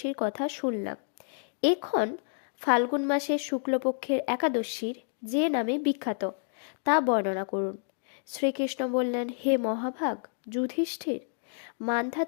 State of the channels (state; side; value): silent; right; digital silence